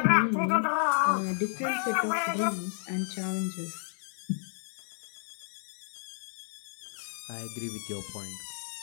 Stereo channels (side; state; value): right; silent; 57 dB below the other